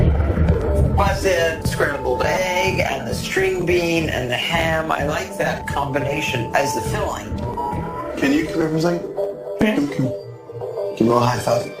Plus the scrambled egg and the string bean and the ham. I like that combination as the filling. Can you come here for a second? Yeah. Give me a little high five.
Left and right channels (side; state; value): both; identical; correlation 1.00